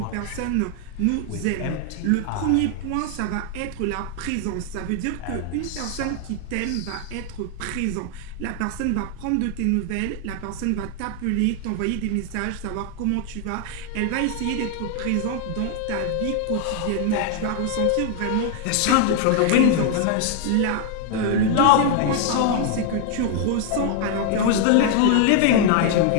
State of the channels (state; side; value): different; both; correlation 0.00